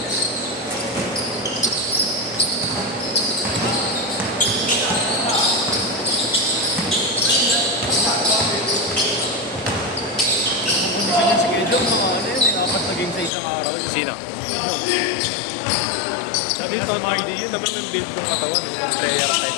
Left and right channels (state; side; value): drops out; right; at 13.3 s